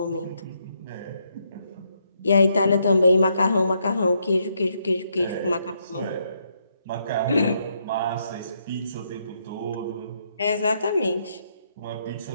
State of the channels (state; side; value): inverted; both; correlation -0.76